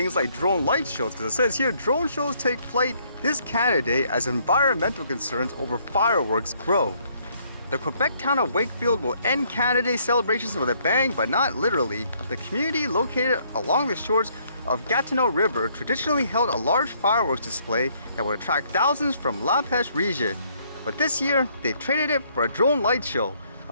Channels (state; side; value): inverted; both; correlation -0.67